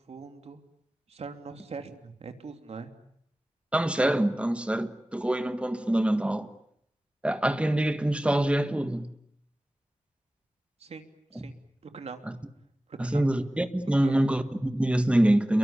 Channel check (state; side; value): normal; both; correlation 0.96